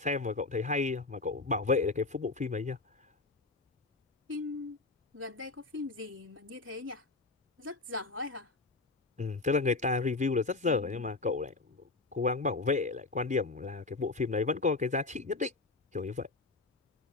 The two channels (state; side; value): quieter; right; 3.5 dB